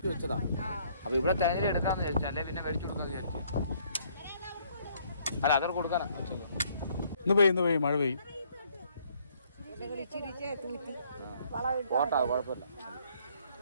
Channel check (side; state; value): both; inverted; correlation -0.64